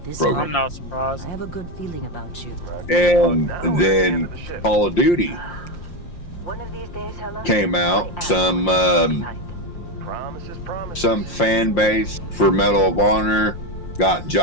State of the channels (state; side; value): late; right; 5.7 ms